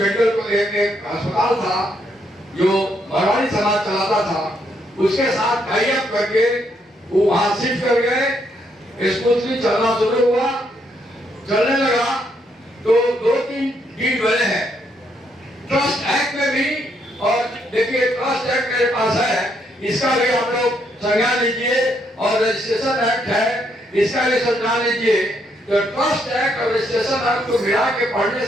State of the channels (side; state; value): both; normal; correlation 0.74